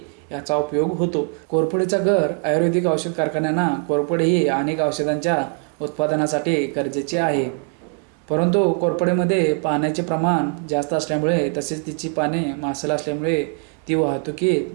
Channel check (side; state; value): left; quieter; 37.0 dB